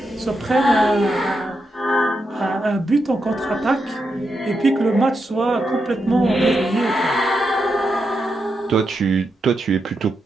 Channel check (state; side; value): normal; both; correlation 0.84